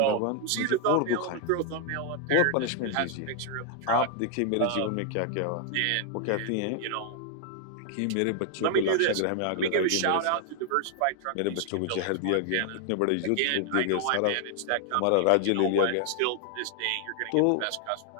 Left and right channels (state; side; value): different; both; correlation 0.00